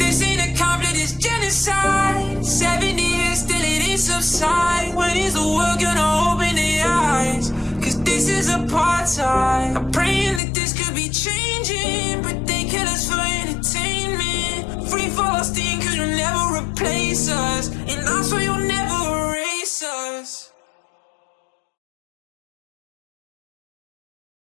ain't a conflict, it's genocide. 70 years still it ain't subside. When is the world gonna open their eyes? Cause this is apartheid. I'm praying that this could be changing, but they kill us for entertainment. Free Palestine, cause you'll never replace us, and I swear you'll never erase us.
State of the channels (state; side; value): drops out; right; at 10.4 s